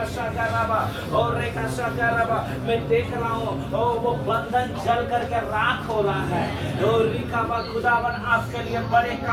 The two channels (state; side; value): identical; both; correlation 1.00